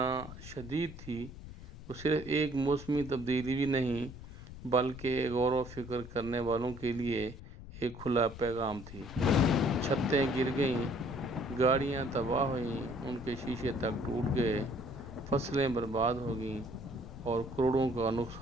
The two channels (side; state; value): left; noise; rumble, 13 dB below the sound